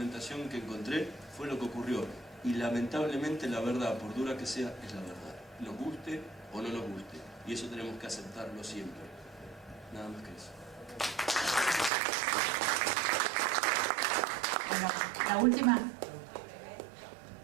que encontré, fue lo que ocurrió. Y lamentablemente la verdad, por dura que sea, es la verdad. Nos guste o no nos guste. Y eso tenemos que aceptarlo siempre. Nada más que eso. Bueno, la última.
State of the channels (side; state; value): left; drops out; at 11.9 s